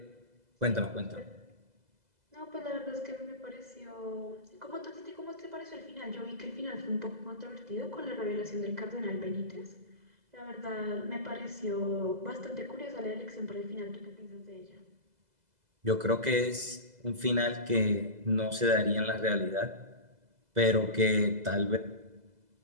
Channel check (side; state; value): left; late; 2.0 ms